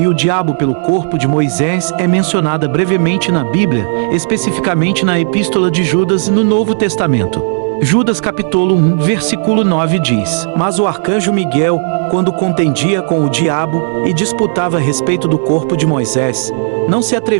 o diabo pelo corpo de Moisés é mencionada brevemente na Bíblia, especificamente na Epístola de Judas no Novo Testamento. Judas capítulo 1, versículo 9 diz: Mas o arcanjo Miguel, quando contendia com o diabo e disputava a respeito do corpo de Moisés, não se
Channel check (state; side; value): silent; left; digital silence